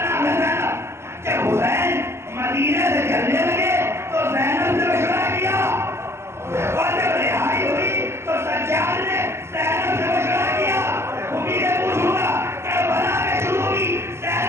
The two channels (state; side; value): late; left; 0.13 ms